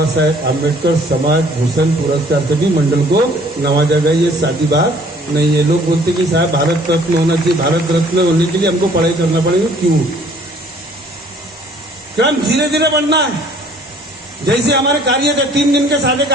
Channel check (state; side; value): normal; both; correlation 0.56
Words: साहेब आम्बेडकर समाज भूषण पुरस्कार से भी मंडल को नवाजा गया। ये सादी बात नहीं है। लोग बोलते कि साहब भारत रत्न होना चाहिए, भारत रत्न होने के लिए हमको पढ़ाई करना पड़ेगा। क्यों? क्रम धीरे धीरे बढ़ना है। जैसे हमारे कार्य थे, 3 दिन के सादे